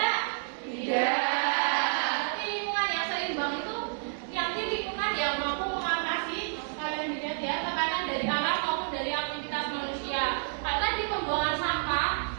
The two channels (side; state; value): left; silent; digital silence